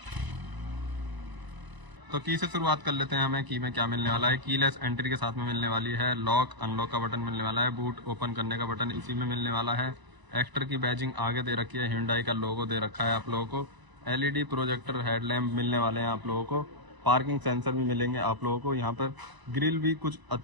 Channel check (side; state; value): left; late; 1.0 ms